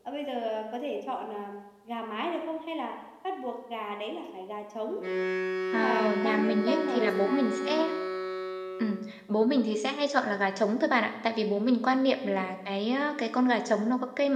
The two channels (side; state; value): both; identical; correlation 1.00